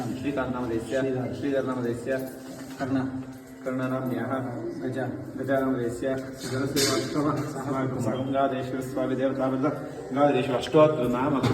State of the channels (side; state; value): both; identical; correlation 1.00